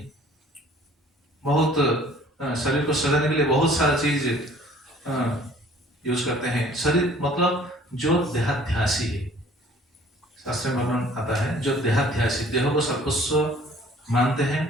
बहुत शरीर को सजाने के लिए बहुत सारा चीज यूज करते हैं। शरीर मतलब जो देहाध्यासी है, शास्त्र में वर्णन आता है, जो देहाध्यासी, देह को सर्वस्व मानते हैं।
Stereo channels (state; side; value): normal; both; correlation 0.53